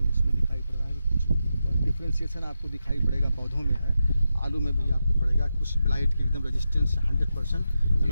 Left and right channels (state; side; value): inverted; both; correlation -0.88